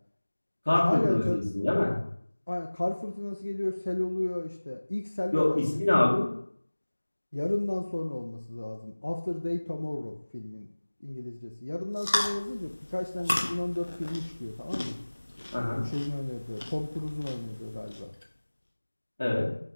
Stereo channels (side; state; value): both; inverted; correlation -1.00